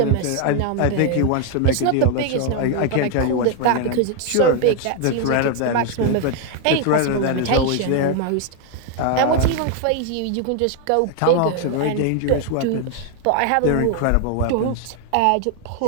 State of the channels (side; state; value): both; different; correlation 0.01